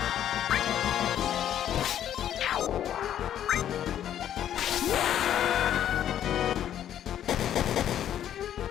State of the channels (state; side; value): quieter; right; 10.6 dB